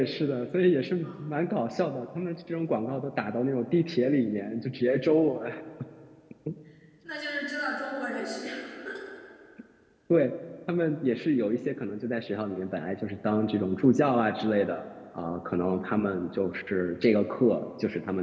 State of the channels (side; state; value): both; identical; correlation 1.00